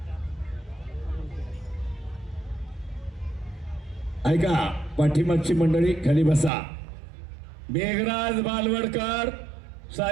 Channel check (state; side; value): drops out; left; at 6.5 s